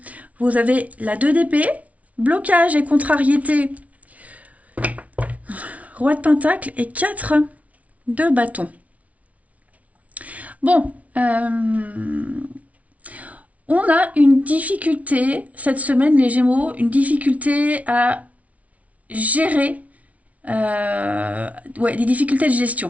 vous avez la 2 d'épée, blocage et contrariété. Roi de Pentacle et 4 de bâton. Bon, on a une difficulté cette semaine, les Gémeaux, une difficulté à gérer des difficultés de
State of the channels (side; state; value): left; late; 0.068 ms